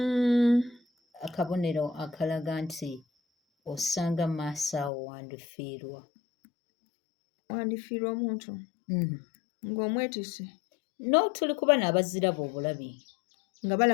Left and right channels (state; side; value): drops out; right; at 4.9 s